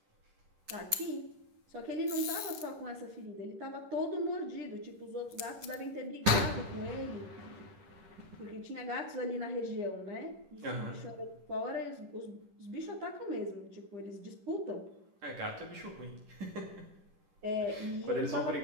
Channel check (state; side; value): late; left; 10 ms